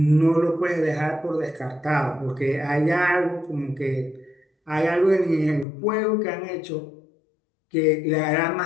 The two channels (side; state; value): right; drops out; at 5.7 s